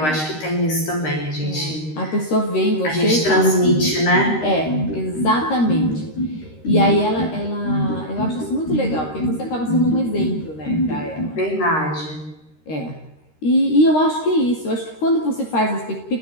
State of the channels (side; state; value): right; late; 13 ms